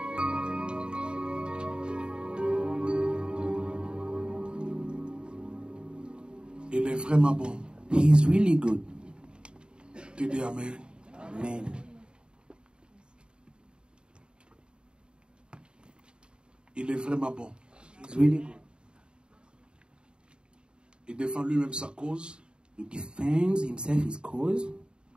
Il est vraiment bon. He is really good. Tu dis Amen. Amen. Il est vraiment bon. He's really good. Il défend lui-même sa cause. He defends himself, his cause.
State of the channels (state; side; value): late; left; 0.051 ms